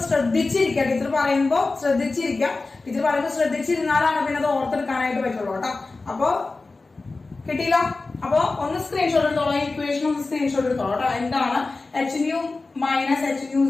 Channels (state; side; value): quieter; right; 3.6 dB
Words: ശ്രദ്ധിച്ചിരിക്കുക, ടീച്ചർ പറയുമ്പോ ശ്രദ്ധിച്ചിരിക്കുക. ടീച്ചർ പറയുമ്പോ ശ്രദ്ധിച്ചിരുന്നാലാണ് പിന്നെ അത് ഓർത്തെടുക്കാനായിട്ട് പറ്റുള്ളൂ കേട്ടോ. അപ്പൊ കിട്ടിയില്ല? അപ്പൊ ഒന്ന് സ്ക്രീൻഷോട്ട് എടുത്തോളാം, ഇക്വേഷൻ ഒന്ന് സ്ക്രീൻഷോട്ട് എടുത്തോളാം കേട്ടോ. എന്താണ് H nu minus H nu